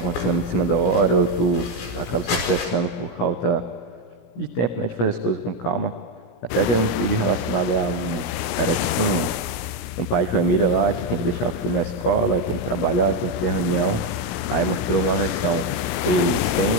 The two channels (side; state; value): right; late; 17 ms